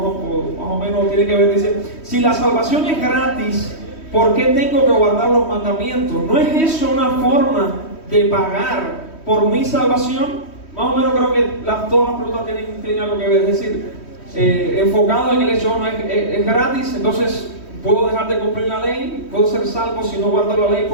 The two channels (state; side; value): late; right; 3.1 ms